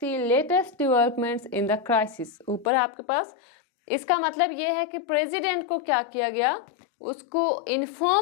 latest developments in the crisis। ऊपर आपके पास इसका मतलब ये है कि प्रेसिडेंट को क्या किया गया? उसको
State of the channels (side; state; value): right; drops out; at 2.7 s